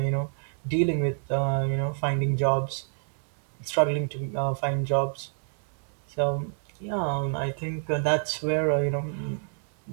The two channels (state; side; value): silent; left; 59 dB below the other